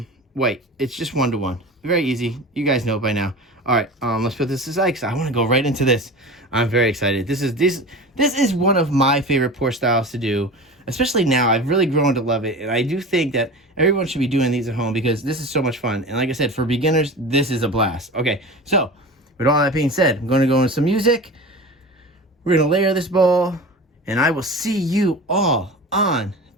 white. It's just 1-to-1. Very easy. You guys know it by now. All right, let's put this aside because I want to go right into this. I'm very excited. This is one of my favorite pour styles to do. Especially now, I've really grown to love it, and I do think that everyone should be doing these at home because this is so much fun. And like I said, for beginners, this is a blast. Okay, so with all that being said, I'm going to go into some music. We're going to layer this bowl, and I will see you all on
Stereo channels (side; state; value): both; normal; correlation 0.33